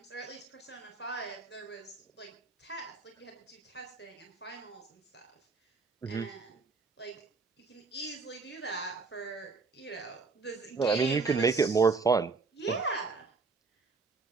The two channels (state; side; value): quieter; left; 4.3 dB